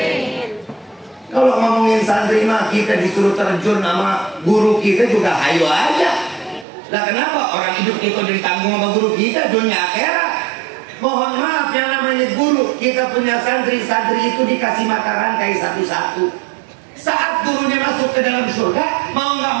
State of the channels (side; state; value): left; drops out; at 6.7 s